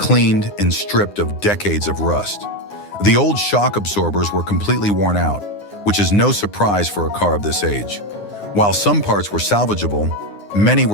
and stripped of decades of rust. The old shock absorbers were completely worn out, which is no surprise for a car of this age. While some parts were salvageable, many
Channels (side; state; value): right; late; 9.7 ms